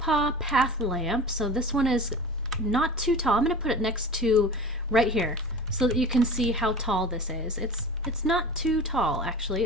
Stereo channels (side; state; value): both; normal; correlation 0.36